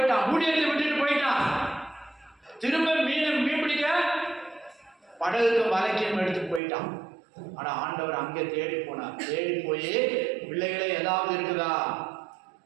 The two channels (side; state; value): left; drops out; at 6.6 s